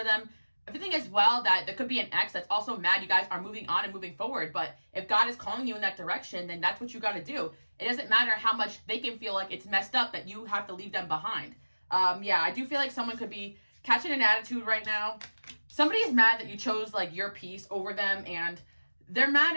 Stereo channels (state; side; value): inverted; both; correlation -1.00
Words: them. Everything as well, that there could be an ex that's also mad you guys are moving on and moving forward, but if God is calling you in that direction, then that's what you got to do. It doesn't matter how much they can feel like it's messed up that you have to leave them behind. I do feel like someone could be catching an attitude right now. Somebody is mad that you chose like your peace over them, and they're mad